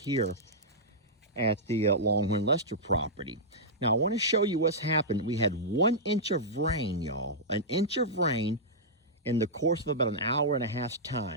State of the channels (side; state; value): both; normal; correlation -0.12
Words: at the Longhorn Lester property. Now, I want to show you what's happened. We had 1 inch of rain, y'all. An inch of rain in the course of about an hour and a half's